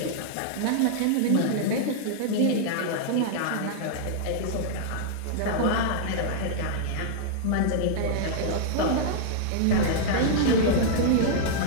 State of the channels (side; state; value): both; different; correlation -0.02